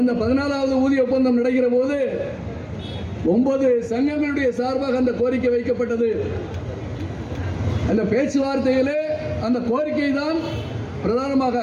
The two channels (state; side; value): identical; both; correlation 1.00